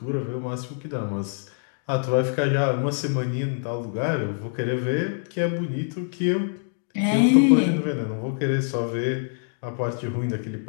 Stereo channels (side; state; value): right; silent; digital silence